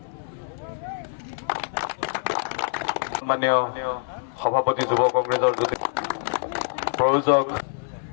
সন্মানীয় সভাপতি যুৱ কংগ্ৰেছৰ প্ৰয়োজক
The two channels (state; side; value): silent; right; 59 dB below the other